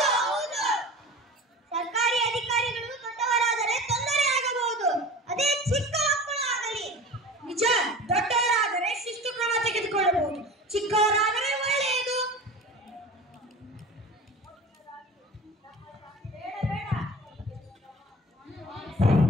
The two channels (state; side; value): normal; both; correlation 0.36